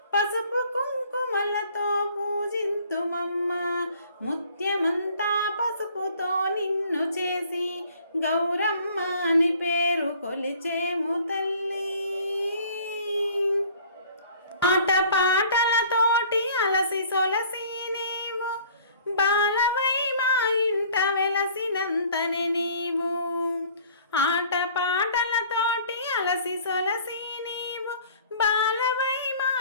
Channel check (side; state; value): both; inverted; correlation -0.52